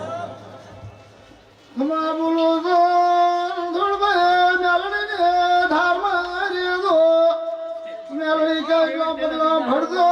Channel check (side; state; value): both; identical; correlation 1.00